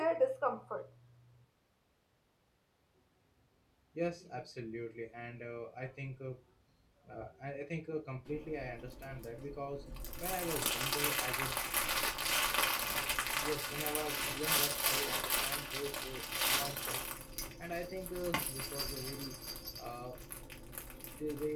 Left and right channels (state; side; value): identical; both; correlation 1.00